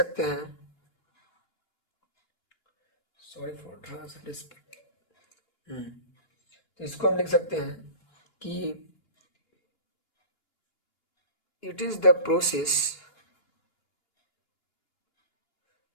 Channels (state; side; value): late; right; 2.9 ms